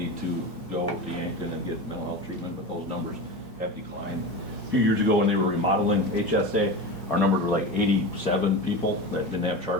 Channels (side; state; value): both; normal; correlation 0.26